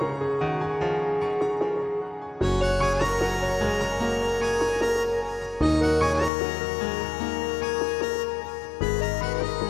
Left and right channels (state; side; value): drops out; right; at 6.3 s